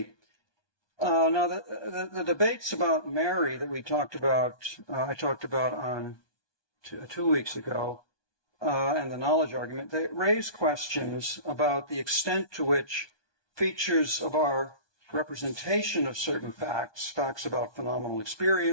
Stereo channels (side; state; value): right; late; 1.2 ms